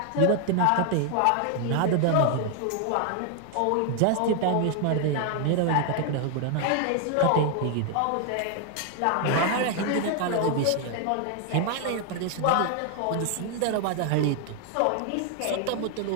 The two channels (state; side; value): different; both; correlation 0.00